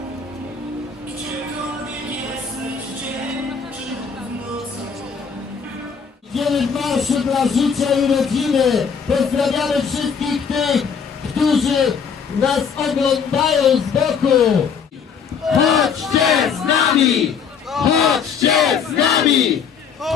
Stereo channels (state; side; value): quieter; right; 6.4 dB